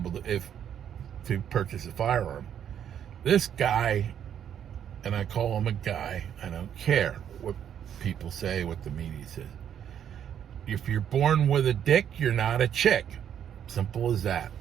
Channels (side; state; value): left; quieter; 9.3 dB